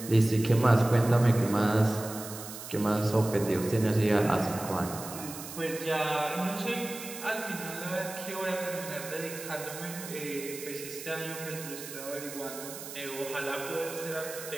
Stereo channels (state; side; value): noise; right; hiss, 11 dB below the sound